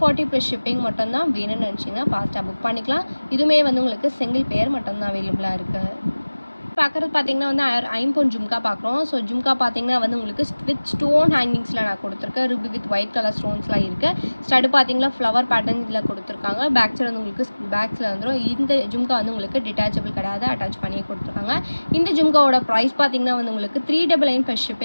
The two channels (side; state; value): both; inverted; correlation -1.00